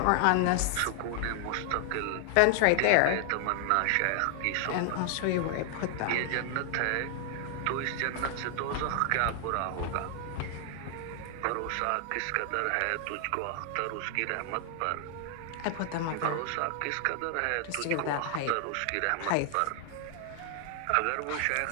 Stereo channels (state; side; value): different; both; correlation 0.00